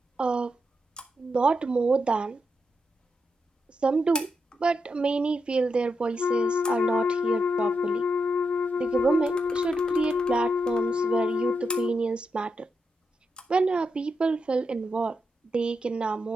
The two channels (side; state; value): both; normal; correlation 0.84